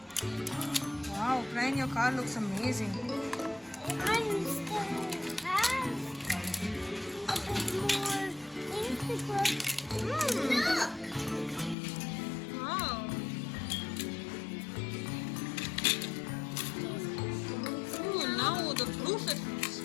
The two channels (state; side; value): drops out; right; at 11.8 s